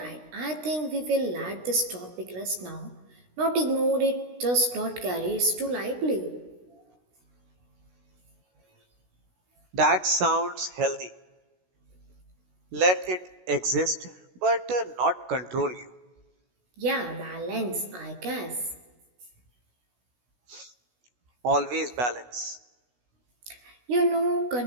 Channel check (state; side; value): late; left; 16 ms